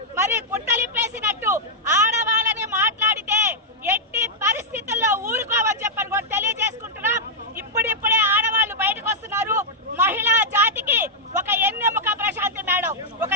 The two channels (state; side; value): normal; both; correlation -0.05